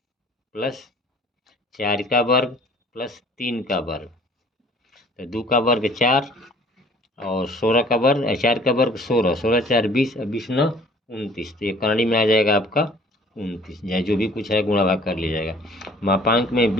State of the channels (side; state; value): both; normal; correlation 0.53